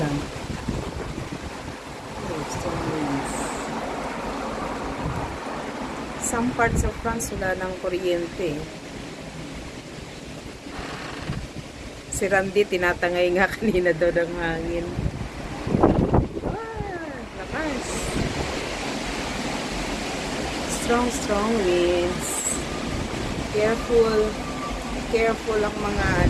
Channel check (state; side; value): identical; both; correlation 1.00